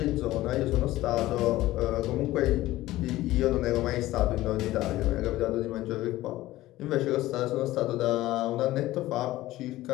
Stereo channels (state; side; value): quieter; right; 16.5 dB